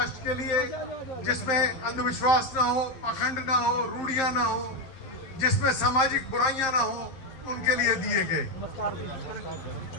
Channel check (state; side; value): late; right; 11 ms